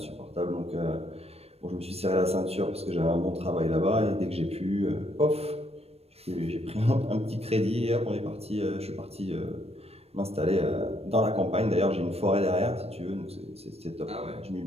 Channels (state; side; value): late; left; 0.29 ms